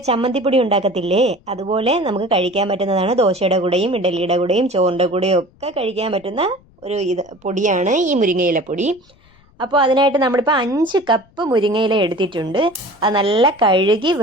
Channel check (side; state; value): left; noise; rumble, 30 dB below the sound